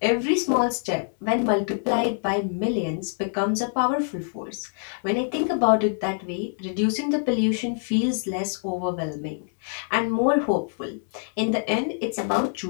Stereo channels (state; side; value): silent; right; digital silence